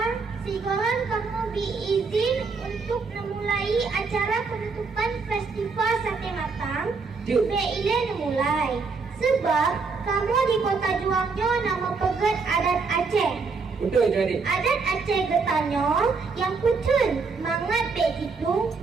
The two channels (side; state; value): left; quieter; 4.7 dB